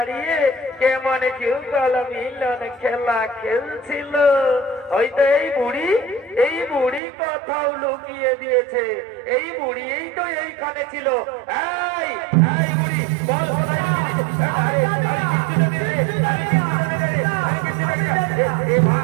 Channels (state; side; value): drops out; left; at 7.0 s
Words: কেমন যুগল মিলন খেলা খেলছিল। হয়তো এই বুড়ি কোথাও লুকিয়ে দিয়েছে। এই বুড়ি এই তো এইখানে ছিল। এই এই বুড়ি বল